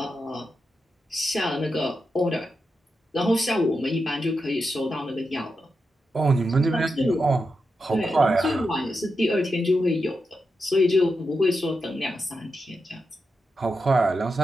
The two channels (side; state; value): both; normal; correlation 0.87